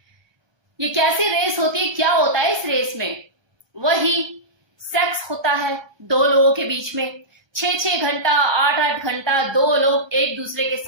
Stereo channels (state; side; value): late; left; 1.3 ms